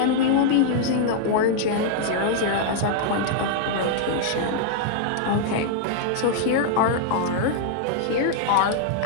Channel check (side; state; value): both; different; correlation -0.01